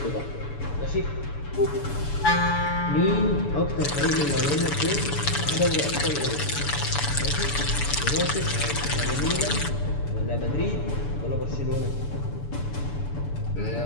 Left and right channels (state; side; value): late; right; 7.0 ms